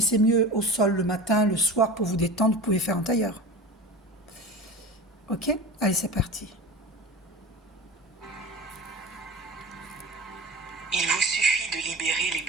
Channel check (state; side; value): normal; both; correlation 0.32